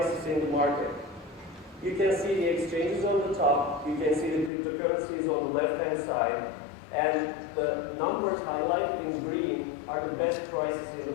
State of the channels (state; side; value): drops out; right; at 4.5 s